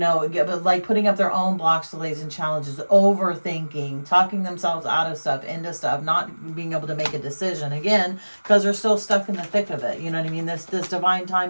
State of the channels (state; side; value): inverted; both; correlation -1.00